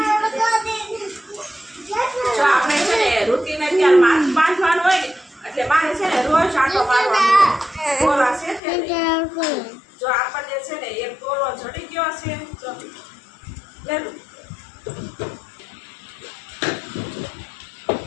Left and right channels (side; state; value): right; drops out; at 8.6 s